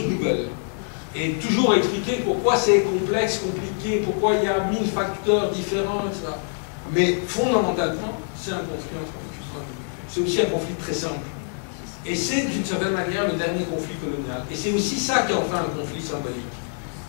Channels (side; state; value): right; silent; 56 dB below the other